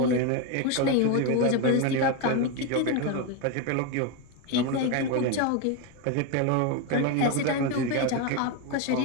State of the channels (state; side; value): different; both; correlation 0.03